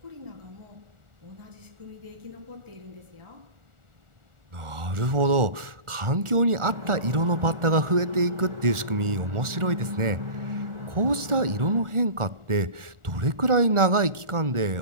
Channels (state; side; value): late; left; 1.4 ms